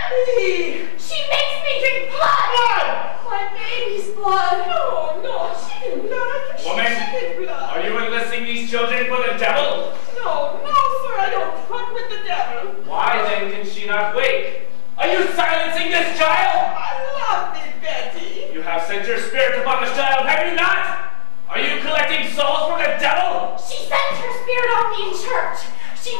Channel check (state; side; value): silent; right; digital silence